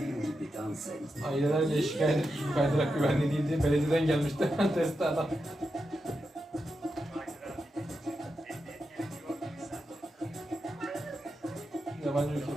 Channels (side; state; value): both; normal; correlation 0.88